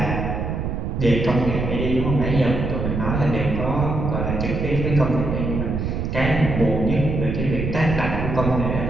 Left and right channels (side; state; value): right; noise; rumble, 2 dB below the sound